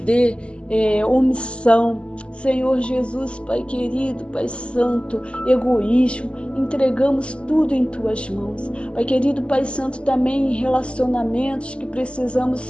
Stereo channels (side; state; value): right; late; 0.054 ms